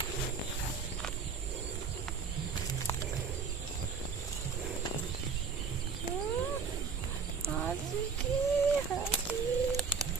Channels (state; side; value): quieter; left; 5.5 dB